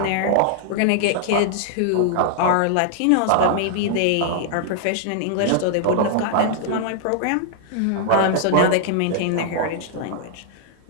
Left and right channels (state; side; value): different; both; correlation -0.01